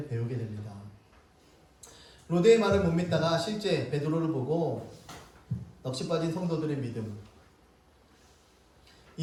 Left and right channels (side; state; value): both; identical; correlation 1.00